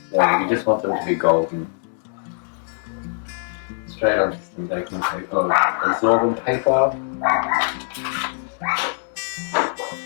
So you just want them to be golden. Straight onto some baking paper, or absorbent paper.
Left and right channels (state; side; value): silent; right; 64 dB below the other